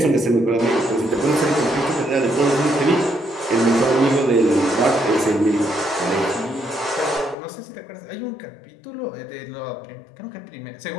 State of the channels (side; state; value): right; drops out; at 7.4 s